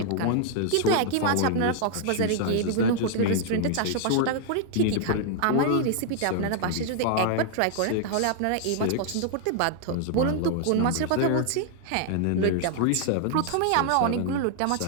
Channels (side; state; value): both; different; correlation 0.00